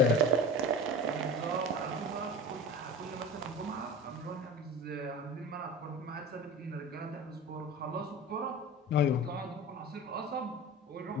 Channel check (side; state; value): both; normal; correlation 0.32